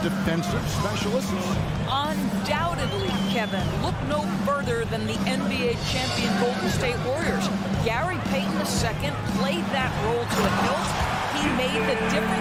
defensive specialists? Undoubtedly, Kevin. Look no further than the NBA champion Golden State Warriors. Gary Payton II played that role to a hilt. He made the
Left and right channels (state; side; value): identical; both; correlation 1.00